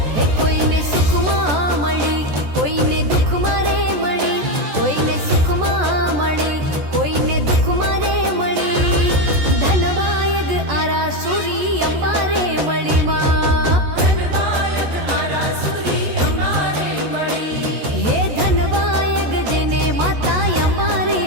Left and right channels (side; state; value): left; late; 14 ms